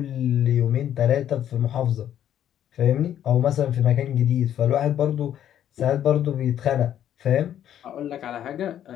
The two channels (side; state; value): right; quieter; 10.6 dB